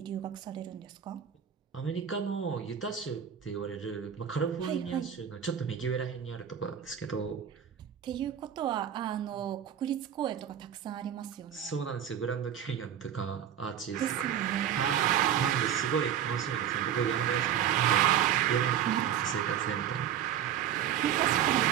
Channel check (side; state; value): left; quieter; 9.5 dB